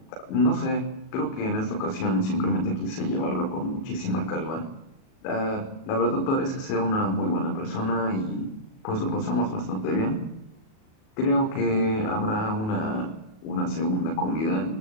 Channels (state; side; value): late; right; 37 ms